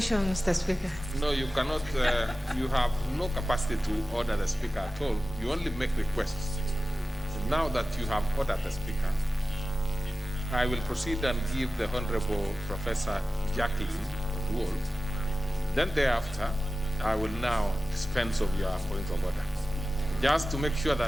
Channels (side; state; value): both; normal; correlation 0.95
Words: Mr. Speaker. No, you cannot. You have no capacity to order the Speaker at all. You only make requests. So now that you have ordered the Speaker, I will proceed and give the Honorable Professor Jacqueline Wool. Then thereafter, I will now dispense of your point of order. Just to make sure